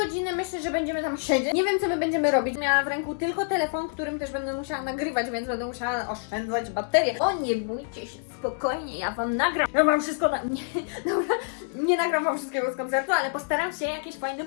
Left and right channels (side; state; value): right; silent; digital silence